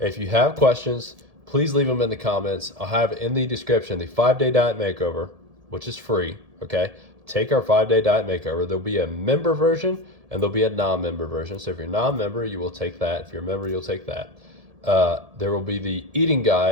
you have questions, please leave them in the comments. I'll have in the description the 5-day diet makeover, which is free, okay? Take our 5-day diet makeover. There'll be a member version and there'll be a non-member version. So if you're non-member, you will take that. If you're a member, you'll take that. There will be the eating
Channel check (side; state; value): left; late; 1.7 ms